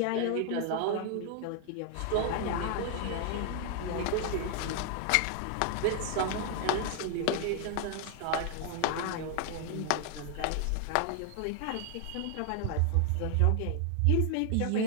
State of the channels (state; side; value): different; both; correlation 0.00